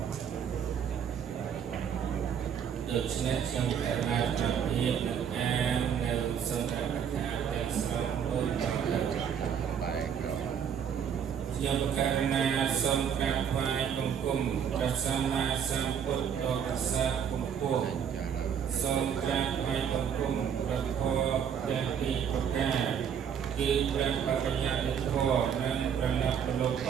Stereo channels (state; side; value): quieter; left; 8.0 dB